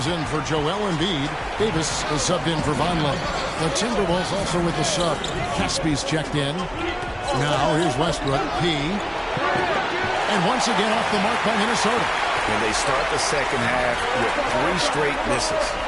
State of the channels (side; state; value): both; identical; correlation 1.00